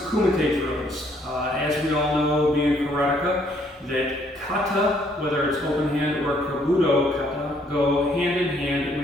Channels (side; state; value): both; normal; correlation 0.66